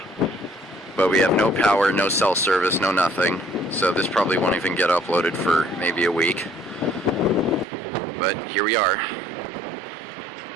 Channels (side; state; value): left; drops out; at 7.7 s